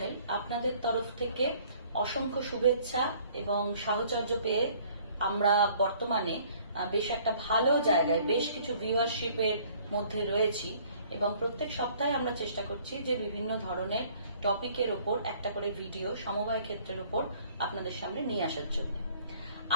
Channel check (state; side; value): inverted; both; correlation -0.57